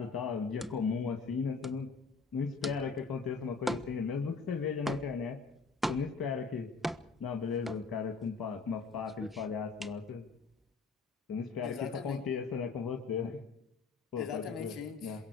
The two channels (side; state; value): right; quieter; 4.7 dB